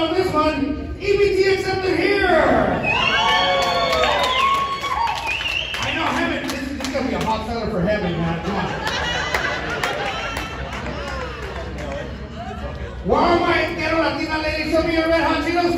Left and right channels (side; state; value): both; identical; correlation 1.00